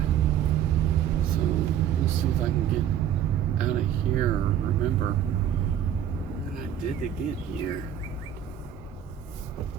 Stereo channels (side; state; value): left; quieter; 9.8 dB